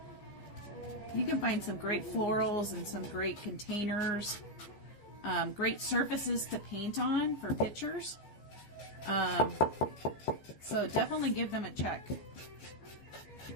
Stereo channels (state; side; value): late; right; 14 ms